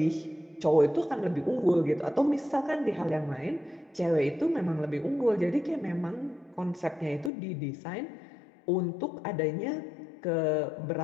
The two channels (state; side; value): drops out; right; at 7.3 s